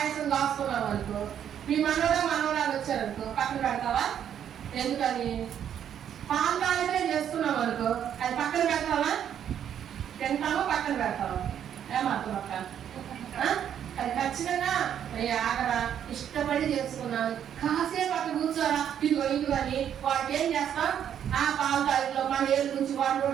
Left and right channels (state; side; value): quieter; left; 9.4 dB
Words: కాసుకున్నాం అనుకో, మీ మనవడో మనవరాలు వచ్చారనుకో పక్కన పెడతావా? ఎందుకని? పాలకాలనే చేసుకున్నాం అనుకో అది పక్కన పెడతావా? తింటామో పక్కన పెడతావా? ఏమర్థం అక్క? అది ఖచ్చితంగా ఆగరా ఇష్టపడి చేసుకున్నాను కాసేపు అక్కడ కూర్చోరా ఇదిగో అని వాటికి ఏం చేస్తాం? ఆ పాలకాయలో మన ఏళ్ళు నుంచి వాటి